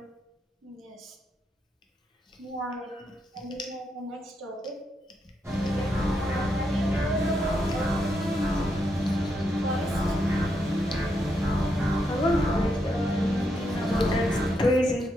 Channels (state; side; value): normal; both; correlation 0.81